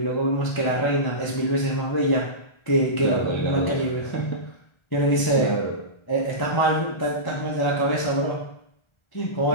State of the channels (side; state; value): right; late; 1.3 ms